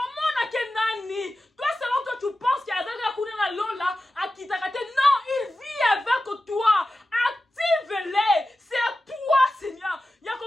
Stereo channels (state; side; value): normal; both; correlation 0.93